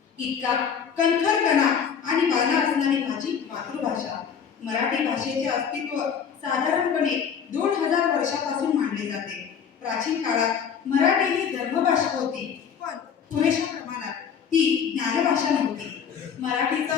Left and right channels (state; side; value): quieter; right; 7.3 dB